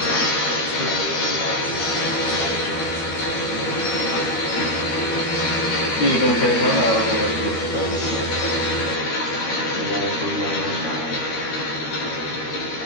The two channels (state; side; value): late; right; 13 ms